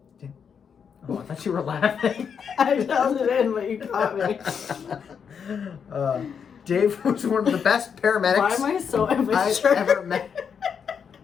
Oh, I thought you were laughing. I held it in, but you caught me. Dave was one of the best paramedics Why am I so I've immature? ever met.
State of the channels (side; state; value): right; quieter; 6.9 dB